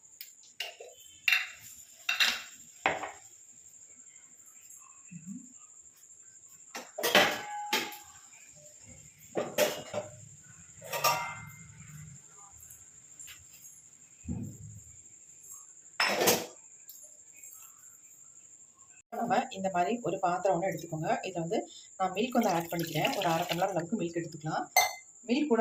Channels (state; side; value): identical; both; correlation 1.00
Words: நம்ம இந்த மாதிரி ஒரு பாத்திரம் ஒன்று எடுத்துக்கோங்க. இதில் வந்து நான் மில்க் வந்து ஆட் பண்ணிக்கிறேன். ஒரு 1/2 டம்ளர் அளவுக்கு மில்க் எடுத்துக்கலாம். மில்க் கூட